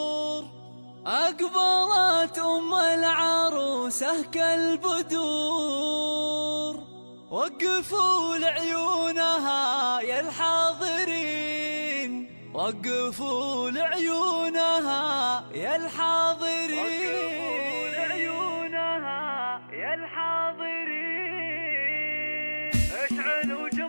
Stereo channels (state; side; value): inverted; both; correlation -1.00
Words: أقبلت أم العروسة كالبدور. وقفوا لعيونها يا الحاضرين، وقفوا لعيونها يا الحاضرين، وقفوا لعيونها يا الحاضرين. اشعلوا